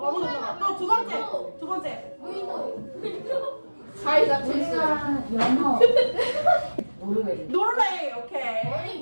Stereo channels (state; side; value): inverted; both; correlation -1.00